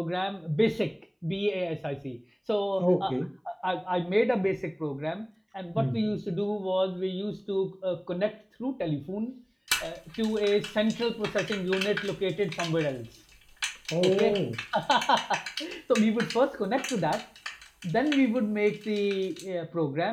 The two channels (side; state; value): both; identical; correlation 1.00